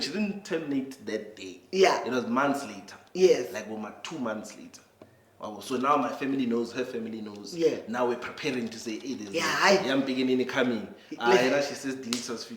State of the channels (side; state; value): both; identical; correlation 1.00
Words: she didn't terminate that day. Yeah. It was months later. Yes. Like 2 months later. So now my family knows, her family knows. Yeah. Now we're preparing to say, hey, there's a young beginning coming. She says delete us